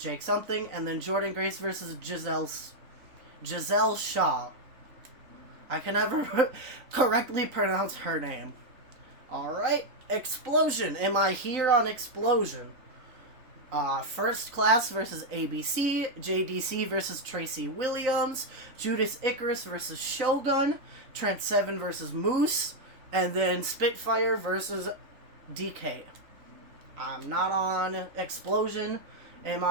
Something, and then Jordan Grace versus Giselle Shaw. I can never correctly pronounce her name. Alright, Explosion. Am I here on Explosion? First Class versus ABC, JDC versus Tracy Williams, Judas Icarus versus Shogun, Trent Seven versus Moose, and then Spitfire versus DK. I'm not on Explosion. Am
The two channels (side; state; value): left; late; 3.9 ms